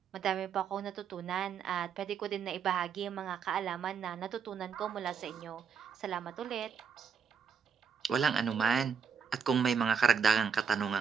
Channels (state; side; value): quieter; left; 6.8 dB